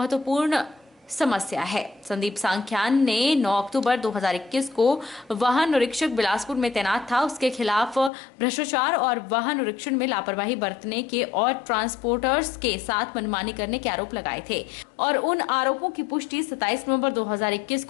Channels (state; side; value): drops out; right; at 8.1 s